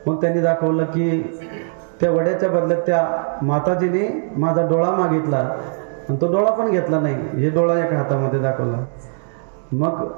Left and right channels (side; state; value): left; silent; digital silence